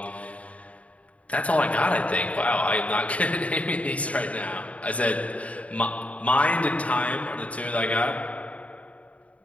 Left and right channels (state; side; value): late; right; 0.066 ms